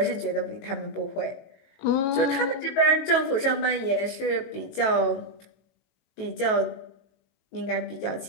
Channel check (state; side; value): late; right; 19 ms